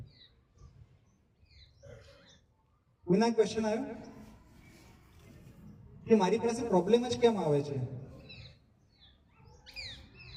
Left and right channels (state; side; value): identical; both; correlation 1.00